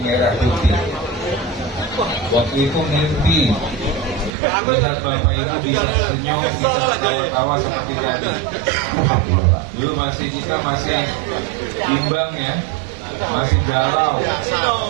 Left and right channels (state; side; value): drops out; left; at 4.3 s